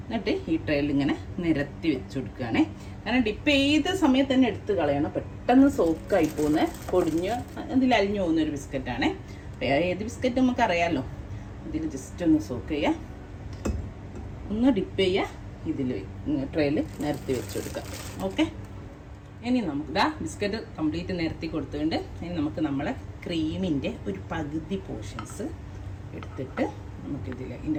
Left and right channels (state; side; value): identical; both; correlation 1.00